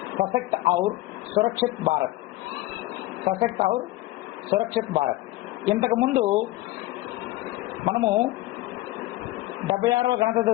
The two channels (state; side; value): quieter; right; 17.8 dB